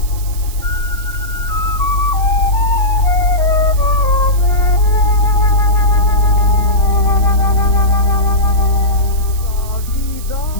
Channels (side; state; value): right; noise; hiss, 16 dB below the sound